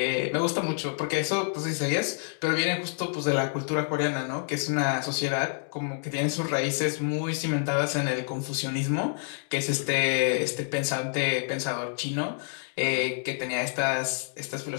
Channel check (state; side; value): silent; right; 59 dB below the other